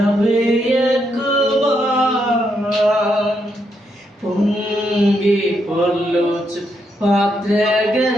పొంగి పొర్లుచు పాత్రగా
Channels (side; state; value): both; normal; correlation 0.79